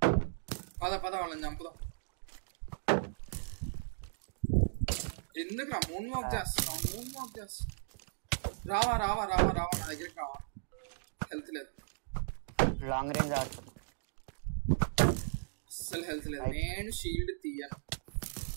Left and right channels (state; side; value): silent; left; digital silence